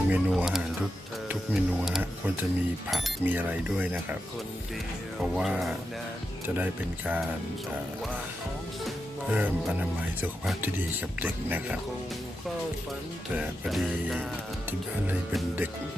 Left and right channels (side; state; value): both; normal; correlation 0.87